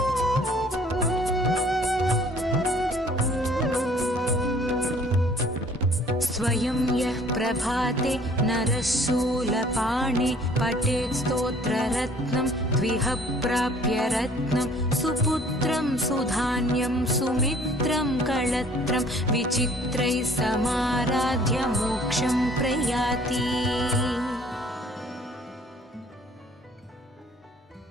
स्वयं यः प्रभाते नरः शूलपाणे पठेत् स्तोत्ररत्नं द्विह प्राप्य रत्नं सुपुत्रं सुधान्यं सुमित्रं कळत्रं विचित्रैः समाराध्य मोक्षं प्रयाति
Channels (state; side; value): normal; both; correlation 0.55